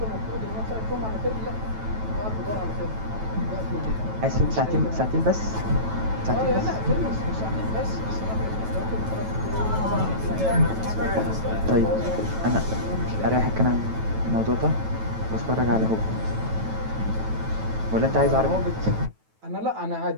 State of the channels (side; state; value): left; late; 9.2 ms